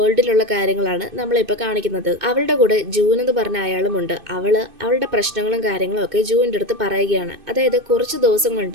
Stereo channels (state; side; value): late; left; 2.5 ms